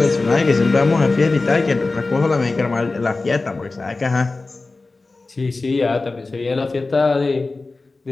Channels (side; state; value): right; quieter; 3.5 dB